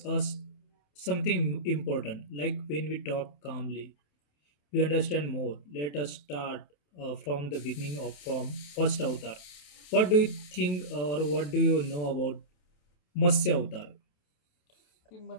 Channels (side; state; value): right; late; 28 ms